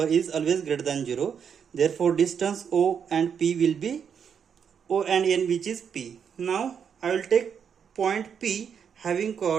is always greater than 0. Therefore distance O and P will be O and N, which is P. Now I will take point P having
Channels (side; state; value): left; quieter; 7.4 dB